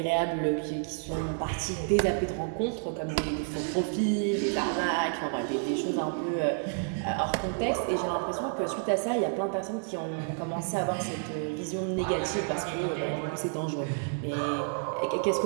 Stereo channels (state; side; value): silent; left; 58 dB below the other